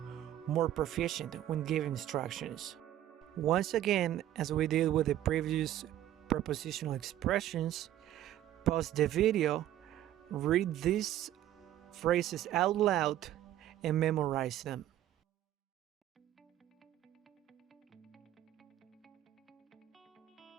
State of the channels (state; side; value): quieter; left; 12.5 dB